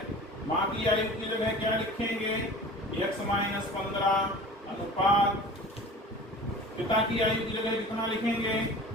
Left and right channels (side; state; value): both; normal; correlation 0.39